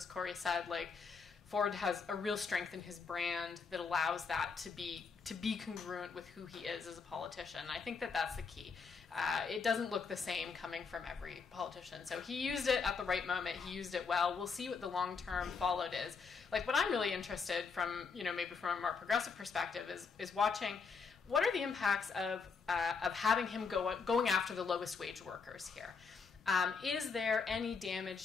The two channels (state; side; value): quieter; right; 5.3 dB